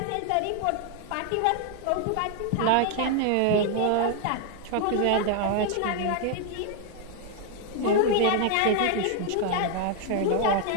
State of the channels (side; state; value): both; different; correlation 0.00